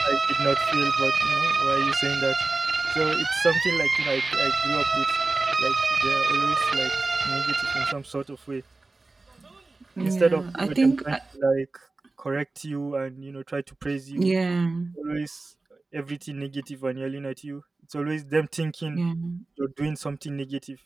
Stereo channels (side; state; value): left; quieter; 3.4 dB